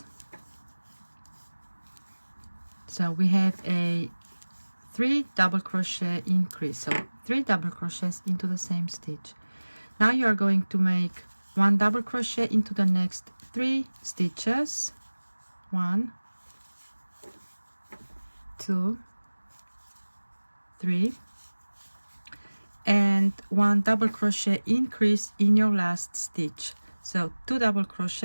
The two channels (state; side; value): inverted; both; correlation -1.00